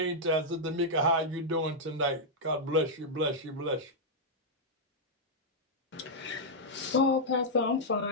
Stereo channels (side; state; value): both; normal; correlation -0.05